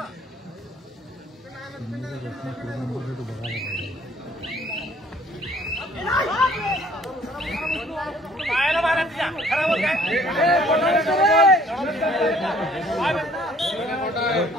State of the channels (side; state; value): both; normal; correlation 0.57